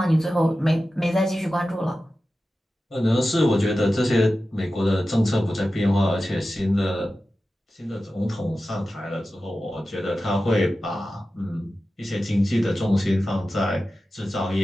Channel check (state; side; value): normal; both; correlation 0.94